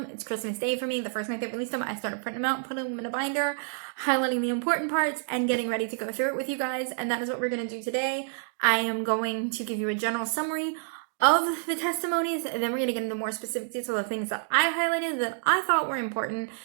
It's Christmas Day for me. The first night they released them, I started printing them out, putting them in a binder, highlighting the important parts, and getting ready to go through it with you guys. And that is what we're going to do today. I am going to give you a general summary of the testimonies, and then we're going to get into more specific details of the things that I highlighted that I thought were important.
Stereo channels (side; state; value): left; silent; 59 dB below the other